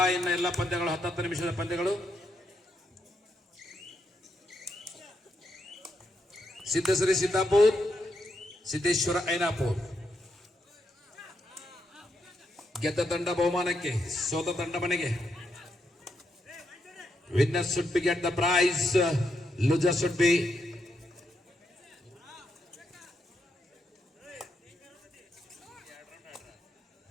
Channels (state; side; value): normal; both; correlation 0.80